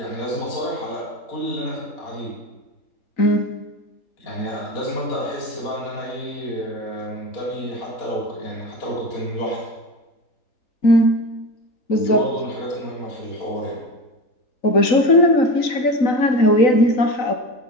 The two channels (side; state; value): right; late; 3.9 ms